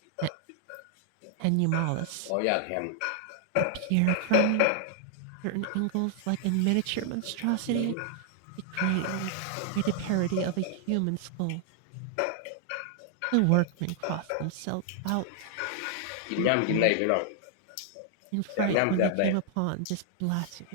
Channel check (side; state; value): both; different; correlation 0.00